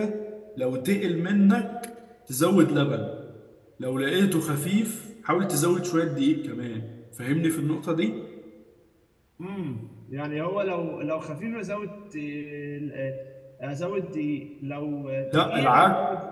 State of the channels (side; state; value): both; identical; correlation 1.00